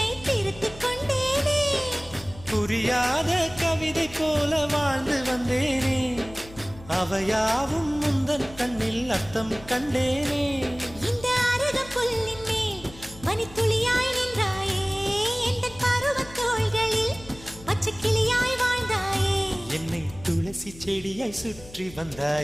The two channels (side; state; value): left; noise; hum, 19 dB below the sound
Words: திருத்திக் கொண்டேனே. புரியாத கவிதை போல வாழ்ந்து வந்தேனே, அவையாவும் முந்தன் கண்ணில் அர்த்தம் கண்டேனே. இந்த அருக புல்லின் மேல் மணித்துளியாய் நின்றாயே, எந்த பருவத் தோள்களில் பச்சை கிளியாய் வாழ்ந்தாயே. என்னை துளசி செடியாய் சுற்றி